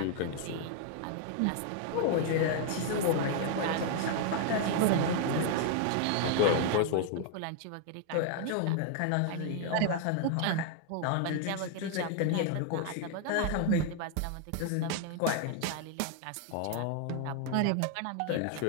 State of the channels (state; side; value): different; both; correlation 0.00